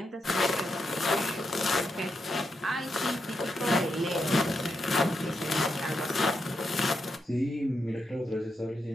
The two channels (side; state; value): both; normal; correlation 0.84